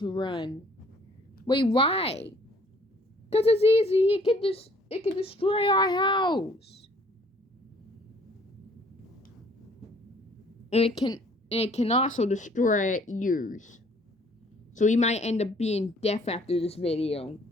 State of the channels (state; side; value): normal; both; correlation 0.59